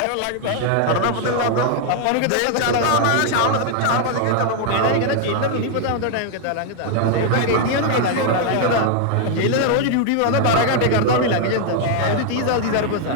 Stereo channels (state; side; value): different; both; correlation 0.00